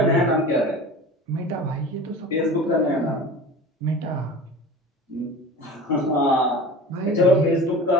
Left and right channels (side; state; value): both; normal; correlation 0.37